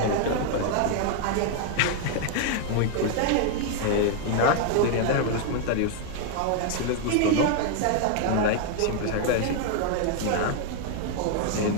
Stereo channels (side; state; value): both; different; correlation 0.00